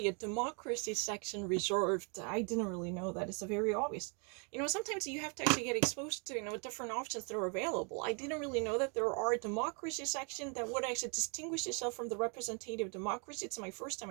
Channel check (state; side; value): quieter; left; 37.0 dB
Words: a democracy section reserved. I didn't really know that. It's very obvious. Sometimes you have to actually get exposed to, different options that are available. I didn't really know that there are a democracy section that would actually distinguish itself from the representative democracy. It's my first